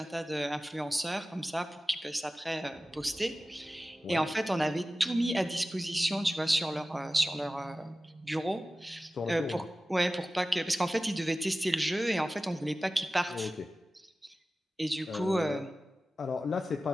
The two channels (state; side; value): normal; both; correlation 0.96